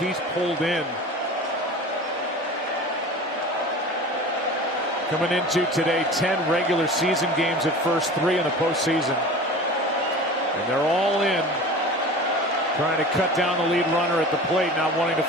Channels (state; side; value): normal; both; correlation 0.37